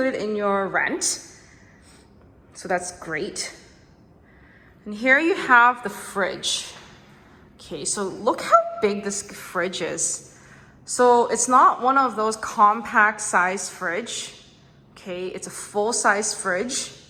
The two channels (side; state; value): both; identical; correlation 1.00